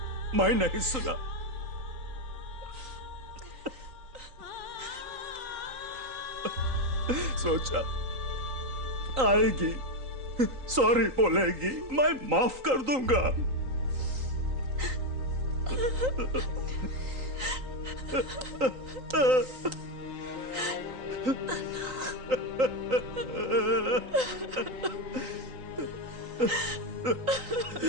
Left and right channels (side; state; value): left; late; 3.9 ms